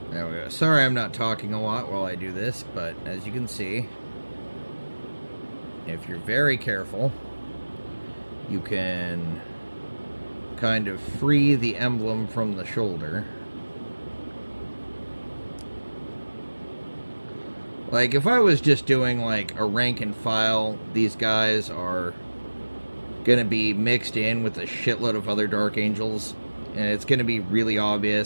there we go. Sorry I'm not talking a lot while I do this, but as you can see, if you're very careful, you can kind of free the emblem from the shoulder. Like, if I was just doing, like, a rank and file, these guys are gonna be mixed in with a shitload of other Dark Angels, and it's gonna be really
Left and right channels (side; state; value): both; inverted; correlation -1.00